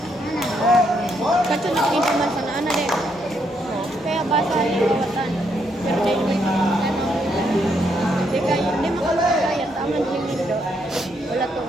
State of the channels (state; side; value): normal; both; correlation 0.75